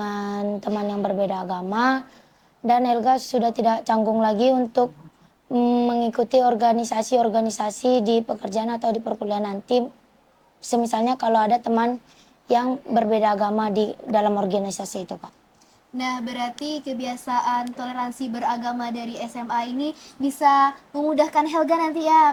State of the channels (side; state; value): both; identical; correlation 1.00